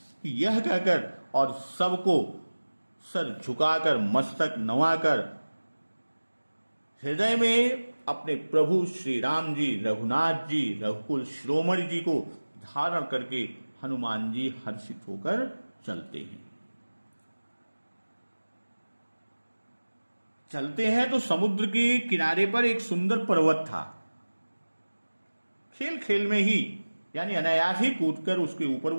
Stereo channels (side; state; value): both; inverted; correlation -1.00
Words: कि यह कहकर और सबको सर झुकाकर, मस्तक नवाकर, हृदय में अपने प्रभु श्री राम जी, रघुनाथ जी, रघुकुल शिरोमणि जी को धारण करके हनुमान जी हर्षित होकर चलते हैं। चलते हैं तो समुद्र के किनारे पर एक सुंदर पर्वत था। खेल खेल में ही, यानी अनायास ही कूदकर उसके ऊपर